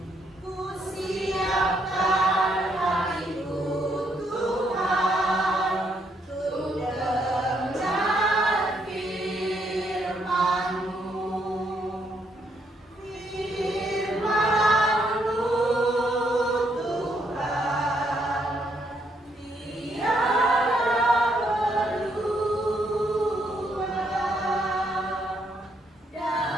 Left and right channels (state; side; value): normal; both; correlation 0.74